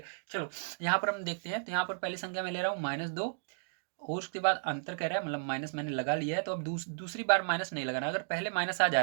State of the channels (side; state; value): left; silent; digital silence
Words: चलो यहाँ पर हम देखते हैं। तो यहाँ पर पहली संख्या में ले रहा हूँ -2, और उसके बाद अंतर कह रहा है, मतलब माइनस मैंने लगा लिया है। तो अब दूसरी बार माइनस नहीं लगाना। अगर पहले माइनस आ जा